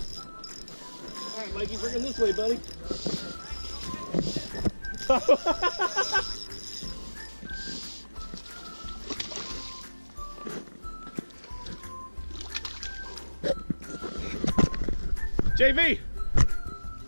All right, Mikey, bring him this way, buddy. JV!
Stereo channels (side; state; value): both; inverted; correlation -1.00